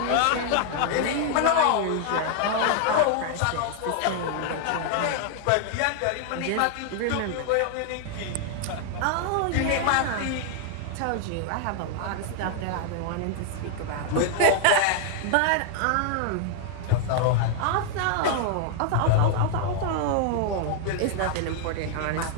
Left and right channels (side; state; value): both; different; correlation 0.00